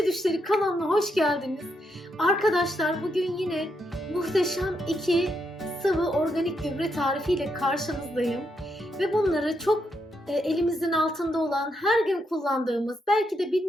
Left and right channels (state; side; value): normal; both; correlation 0.80